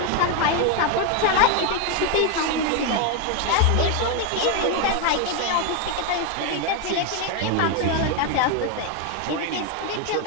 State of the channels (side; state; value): both; different; correlation 0.01